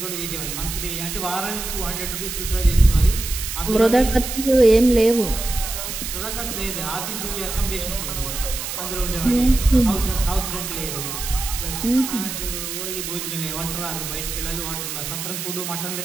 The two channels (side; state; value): right; noise; hiss, 6 dB below the sound